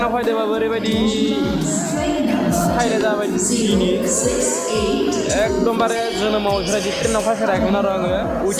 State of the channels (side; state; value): both; identical; correlation 1.00